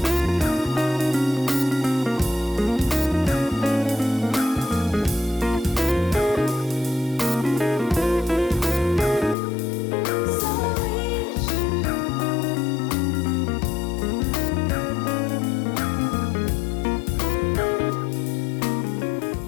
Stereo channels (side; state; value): right; drops out; at 9.3 s